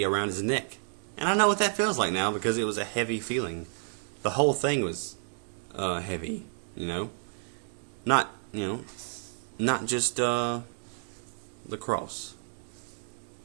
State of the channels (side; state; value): left; silent; digital silence